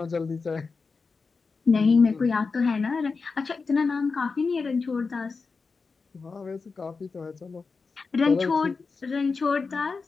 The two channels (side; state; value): right; quieter; 4.6 dB